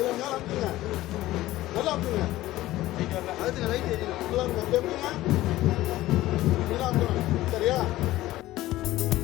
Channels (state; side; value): quieter; right; 16.2 dB